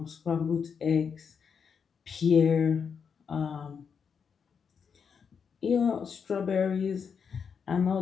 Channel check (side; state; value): right; quieter; 6.5 dB